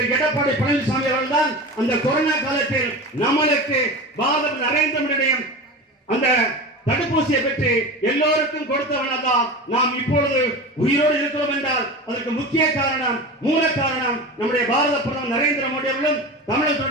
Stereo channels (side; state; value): both; normal; correlation 0.29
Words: எடப்பாடி பழனிசாமி அவர்கள் தான். அந்த கொரோனா காலத்தில் நம்மளுக்கு பாரத நரேந்திர மோடியுடைய அந்த தடுப்பூசியை பெற்று எல்லோருக்கும் கொடுத்தவனதான் நாம் இப்பொழுது உயிரோடு இருக்கிறோம் என்றால் அதற்கு முக்கிய காரணம், மூல காரணம் நம்முடைய பாரத பிரதமர் நரேந்திர மோடி அவர்களும்